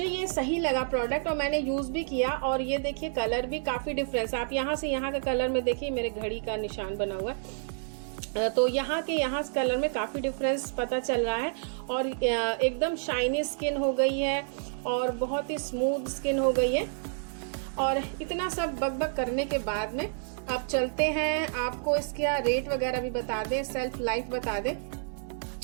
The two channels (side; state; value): left; silent; digital silence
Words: ये सही लगा प्रोडक्ट और मैंने यूज भी किया। और ये देखिए कलर भी काफी डिफरेंस, आप यहाँ से यहाँ का कलर में देखिए, मेरे घड़ी का निशान बना हुआ है, तो यहाँ के यहाँ कलर में काफी डिफरेंस पता चल रहा है। और एकदम शाइनी स्किन हो गई है और बहुत ही स्मूथ स्किन हो गई है। और इतना सब बकबक करने के बाद में अब चलते हैं, आपको इसका रेट वगैरह भी बता दें, सेल्फ लाइफ बता दें।